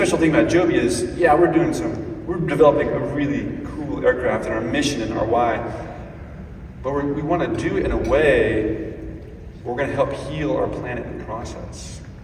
thing about Joby is, yeah, we're developing a really cool aircraft, and our mission and our why, but we want to do it in a way we're going to help heal our planet in the process.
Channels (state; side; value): identical; both; correlation 1.00